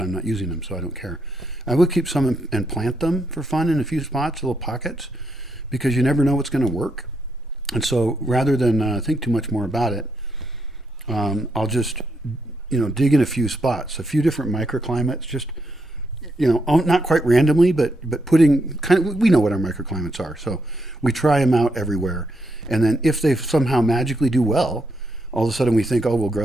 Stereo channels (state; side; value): normal; both; correlation 0.79